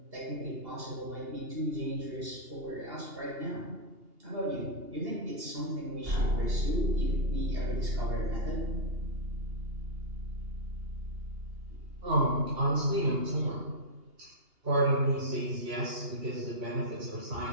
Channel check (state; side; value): late; left; 2.8 ms